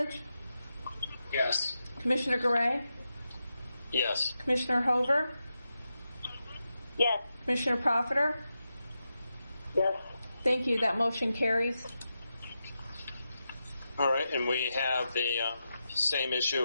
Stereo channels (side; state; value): both; inverted; correlation -0.88